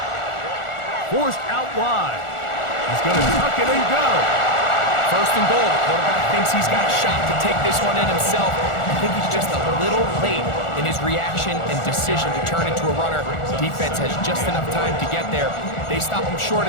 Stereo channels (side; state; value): right; late; 1.4 ms